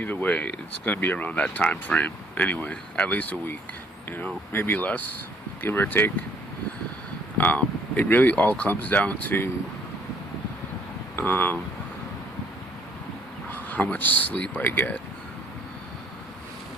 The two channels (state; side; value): normal; both; correlation 0.62